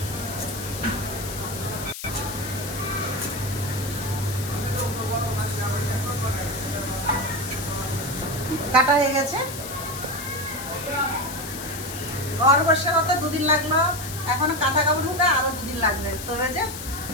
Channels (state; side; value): noise; left; hiss, 9 dB below the sound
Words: কাটা হয়ে গেছে। ঘর বসে হতে 2 দিন লাগলো, এখনো কাঁথা কাপড় ধুতে আরো 2 দিন লাগবে। তবে যে